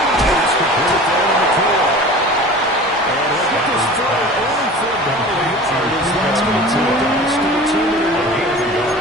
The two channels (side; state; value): both; normal; correlation 0.39